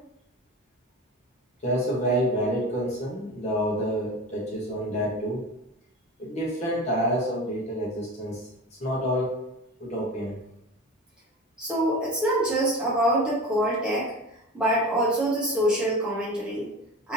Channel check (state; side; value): normal; both; correlation 0.31